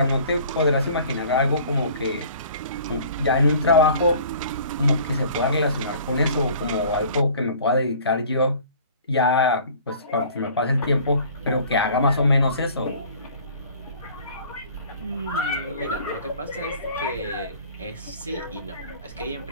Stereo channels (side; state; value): both; inverted; correlation -0.49